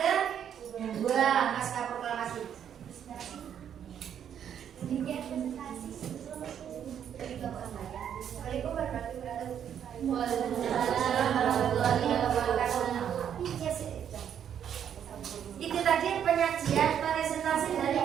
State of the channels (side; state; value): left; quieter; 9.0 dB